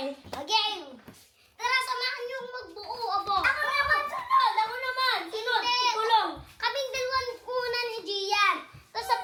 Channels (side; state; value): both; identical; correlation 1.00